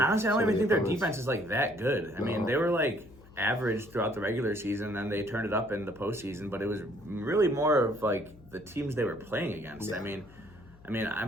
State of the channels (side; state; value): left; noise; hum, 23 dB below the sound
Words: honestly, I don't even think their defense is like that good. I mean, they were like average throughout the regular season, then they turned it up in the postseason, but it was really more of like the teams they were playing against. I mean,